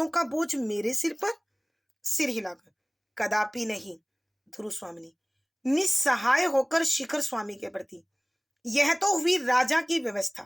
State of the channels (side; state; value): both; identical; correlation 1.00